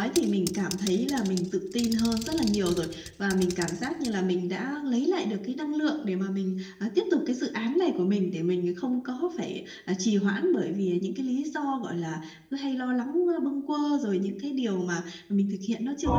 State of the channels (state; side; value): identical; both; correlation 1.00